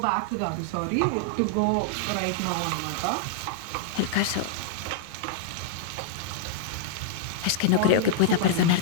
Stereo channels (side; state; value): both; different; correlation -0.01